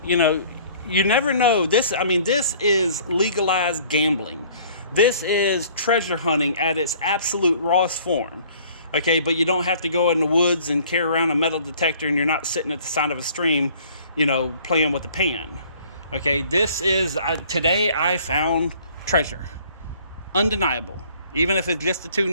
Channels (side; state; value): both; inverted; correlation -0.54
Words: you know, you never know. This is legalized gambling. This is treasure hunting at its absolute rawest form. Okay, but you don't have to go in the woods and carry around a metal detector, and you're not sitting at the side of a stream, you know, playing with the pan. Okay, this is, today I found treasure. Undeniable. Even if it's just the 2